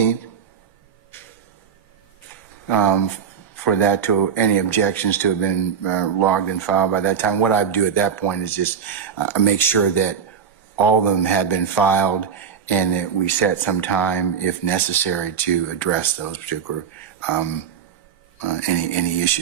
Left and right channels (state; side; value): quieter; left; 7.2 dB